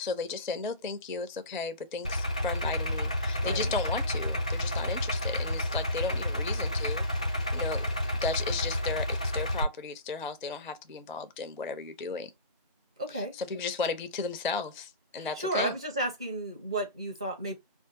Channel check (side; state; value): both; inverted; correlation -0.39